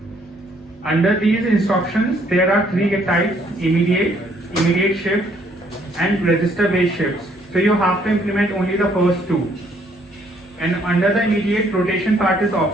Under these instructions, there are 3 types: immediate shift, and register-based shifts. So you have to implement only the first 2. And under the immediate, rotation part is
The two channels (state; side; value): normal; both; correlation 0.66